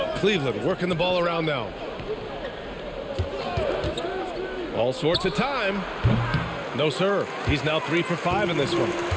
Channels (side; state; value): both; identical; correlation 1.00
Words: Cleveland working the ball around now. All sorts of time. No, sir. He's now 3 for 5 in this one.